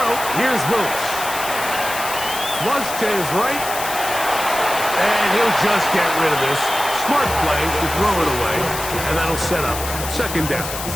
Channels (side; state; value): left; noise; hiss, 7 dB below the sound